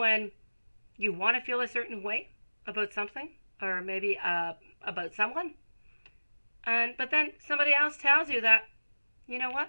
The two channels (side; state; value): both; inverted; correlation -1.00